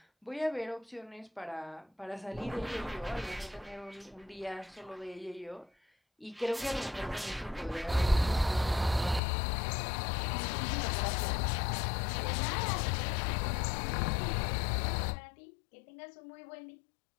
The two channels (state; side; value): drops out; right; at 9.2 s